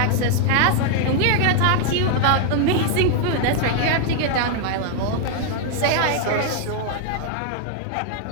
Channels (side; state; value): both; different; correlation 0.00